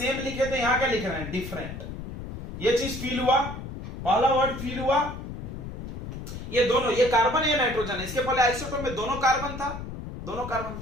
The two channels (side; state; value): left; noise; rumble, 9 dB below the sound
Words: लिखे थे, यहां क्या लिख रहे हैं डिफरेंट। ये चीज फील हुआ, पहला वर्ड फील हुआ। ये दोनों, ये कार्बन है नाइट्रोजन है, इसके पहले आइसोटोप में दोनों कार्बन था,